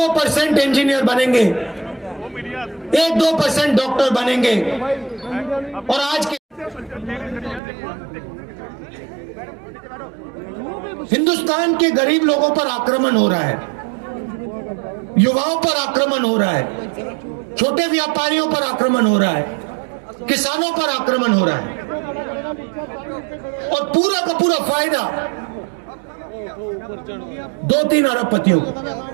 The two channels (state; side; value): drops out; left; at 7.6 s